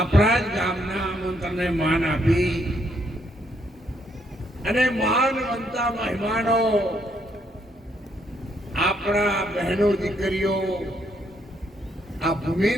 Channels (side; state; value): both; normal; correlation 0.72